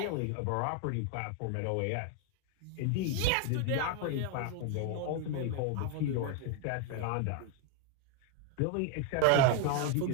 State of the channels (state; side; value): different; both; correlation 0.01